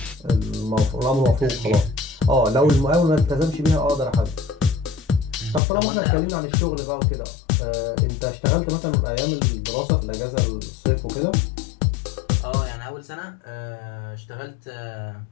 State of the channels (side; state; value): right; drops out; at 5.6 s